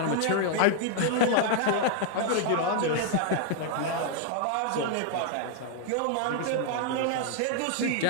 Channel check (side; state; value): both; different; correlation 0.00